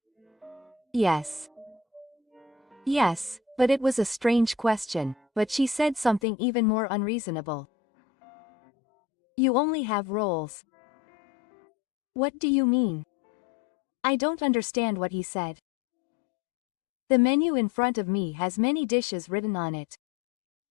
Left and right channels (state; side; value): drops out; right; at 6.2 s